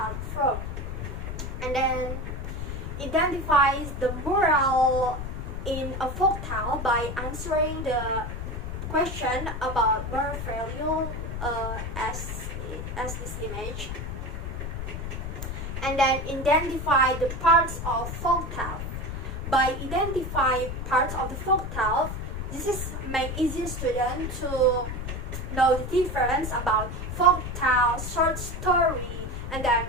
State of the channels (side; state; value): left; noise; rumble, 5 dB below the sound